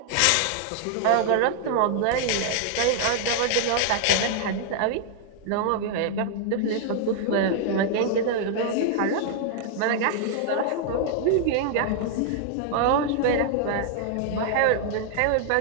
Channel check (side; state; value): both; different; correlation 0.00